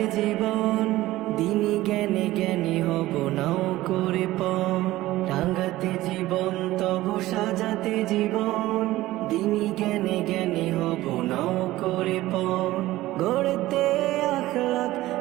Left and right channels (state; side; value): quieter; left; 16.8 dB